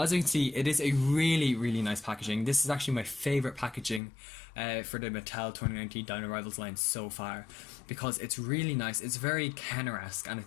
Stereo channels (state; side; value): drops out; right; at 4.0 s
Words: as you can see, it is a really nice packaging. This is actually my favourite packaging for the Mattel 2019 Dino Rivals line so far, because it's really nice. It's very Kenner-esque and